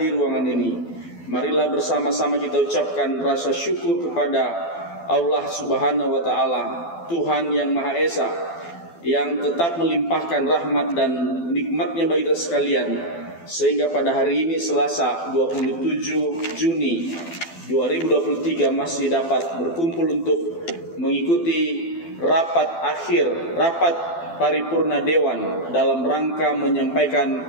ruangan ini, marilah bersama-sama kita ucapkan rasa syukur kepada Allah Subhanahu wa Ta'ala, Tuhan yang Maha Esa, yang tetap melimpahkan rahmat dan nikmatnya bagi kita sekalian, sehingga pada hari ini Selasa 27 Juni 2023 masih dapat berkumpul untuk mengikuti rapat paripurna Dewan dalam rangka menyampaikan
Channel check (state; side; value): late; right; 12 ms